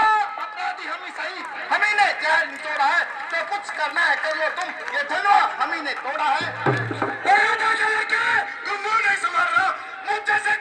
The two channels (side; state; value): both; identical; correlation 1.00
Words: अपराधी हम ही सही, हम ही ने जहर निचोड़ा है, तो कुछ करना है कर लो तुम, ये धनवा हम ही ने तोड़ा है। तुम मुंह नहीं संभाल रहा, मुंह जैसे